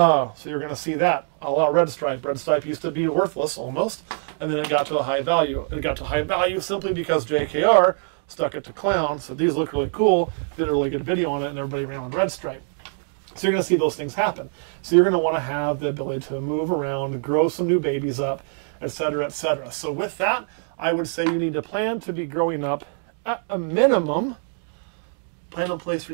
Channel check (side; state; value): left; silent; 58 dB below the other